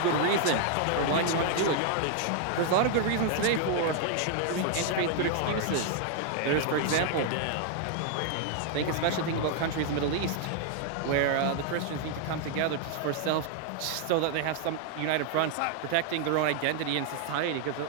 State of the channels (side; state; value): both; different; correlation 0.00